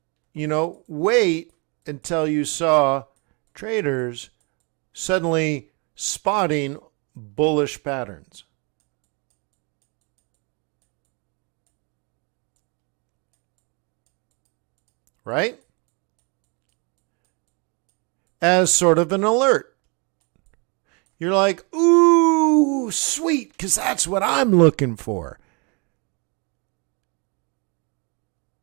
wait until you saw traders suddenly spotting bullish patterns. Right? As sort of an alert. You're like, ooh, sweet, because that's what I'm looking for.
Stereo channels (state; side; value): quieter; left; 32.7 dB